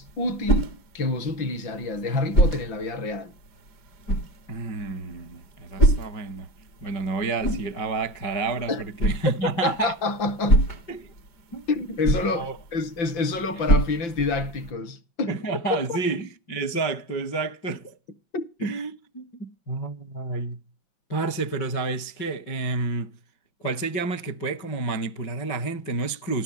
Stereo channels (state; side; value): late; right; 5.3 ms